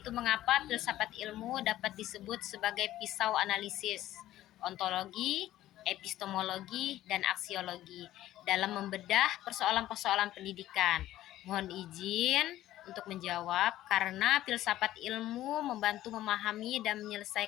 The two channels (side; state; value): right; quieter; 14.1 dB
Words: mengapa filsafat ilmu dapat disebut sebagai pisau analisis, ontologi, epistemologi, dan aksiologi dalam membedah persoalan-persoalan pendidikan. Mohon izin untuk menjawab, karena filsafat ilmu membantu memahami dan